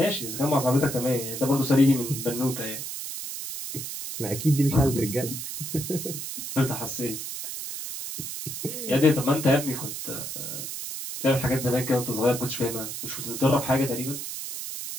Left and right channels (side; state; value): right; noise; hiss, 7 dB below the sound